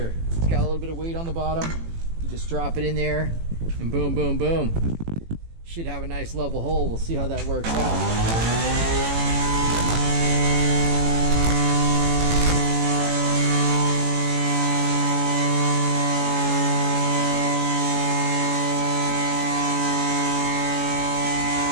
It's got a little bit of weight on the bottom. You just drop it in there and boom, boom, boom. Should have a nice level hole. We'll see how that works out.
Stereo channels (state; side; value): late; left; 18 ms